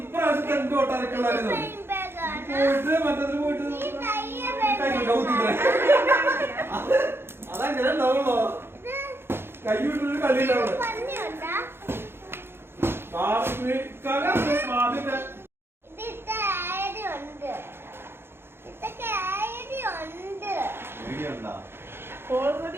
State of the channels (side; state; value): left; late; 0.11 ms